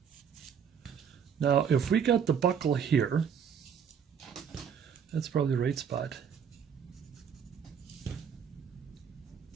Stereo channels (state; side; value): quieter; left; 7.5 dB